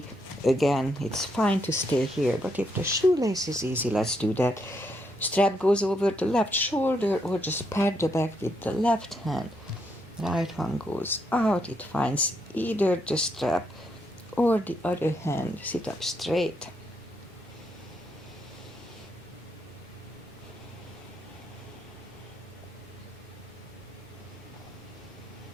Again, it's fine to stay here, but if the shoelace is easy, let's do that. Strap goes over the left shoulder, or just pat the back with the left hand. Right one goes out, it finds either the strap or the other hand. Sit up straight.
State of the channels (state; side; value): normal; both; correlation 0.77